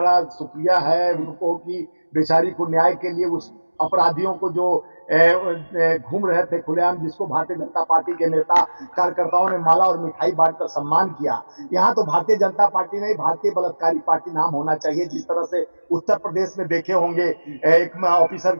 शुक्रिया है उनको कि बेचारी को न्याय के लिए, उस अपराधियों को जो घूम रहे थे खुलेआम, जिसको भारतीय जनता पार्टी के नेता कार्यकर्ताओं ने माला और मिठाई बांटकर सम्मान किया। यहाँ तो भारतीय जनता पार्टी नहीं, भारतीय बलात्कारी पार्टी नाम होना चाहिए। जिस तरह से उत्तर प्रदेश में देखे होंगे, एक ऑफिसर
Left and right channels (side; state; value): both; inverted; correlation -1.00